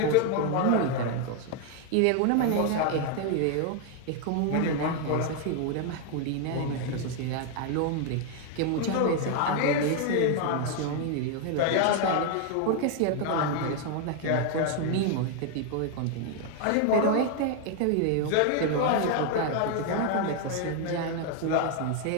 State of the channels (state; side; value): different; both; correlation 0.01